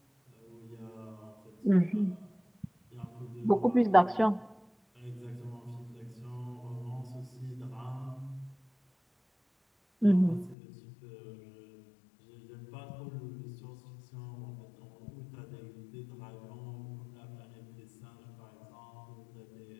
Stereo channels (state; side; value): drops out; right; at 10.6 s